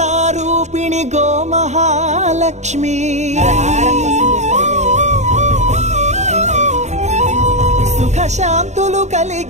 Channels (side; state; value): left; late; 0.33 ms